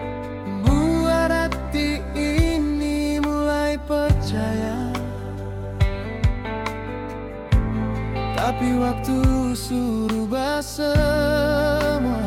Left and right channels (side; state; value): both; identical; correlation 1.00